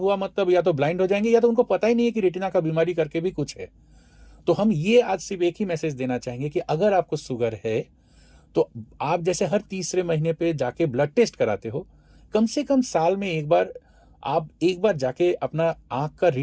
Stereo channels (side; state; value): both; identical; correlation 1.00